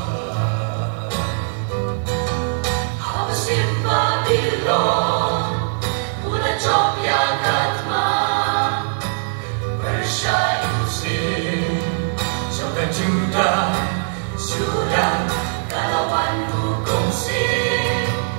How is it Babylon? Una Jopia Katma, Persia Muslim, Joga Judah, Sudan, Kalawan Hukum Sin,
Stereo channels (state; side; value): silent; left; 61 dB below the other